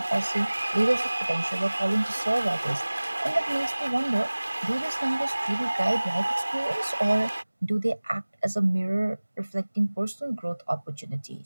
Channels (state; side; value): inverted; both; correlation -1.00